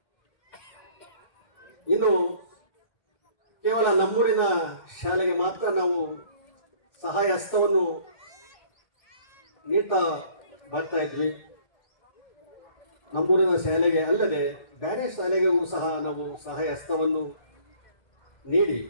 ಇನ್ನು ಕೇವಲ ನಮ್ಮೂರಿನ ಶಾಲೆಗೆ ಮಾತ್ರ ನಾವು ಸಹಾಯ ಹಸ್ತವನ್ನು ನೀಡ್ತಾ ಬರ್ತಾ ಇದ್ವಿ. ನಮ್ಮೂರಿನ ಶಾಲೆಗೆ ಅಲ್ಲದೆ ಬೇರೆ ಶಾಲೆಗಳಿಗೂ ಸಹ ನಾವು ಸಹಾಯ ಹಸ್ತವನ್ನು ನೀಡಿ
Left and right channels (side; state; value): right; late; 1.4 ms